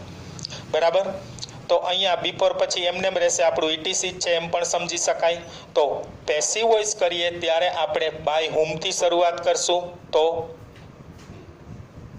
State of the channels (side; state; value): both; identical; correlation 1.00